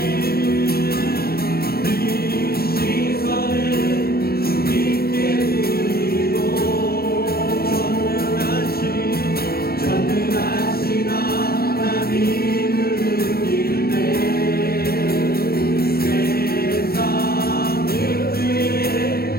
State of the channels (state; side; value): late; right; 0.44 ms